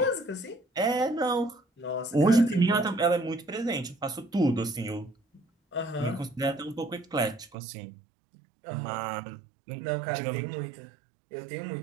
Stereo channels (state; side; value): drops out; left; at 7.6 s